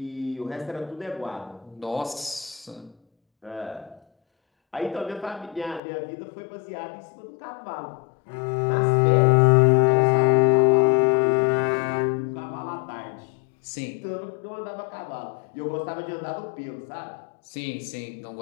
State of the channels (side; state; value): right; drops out; at 5.8 s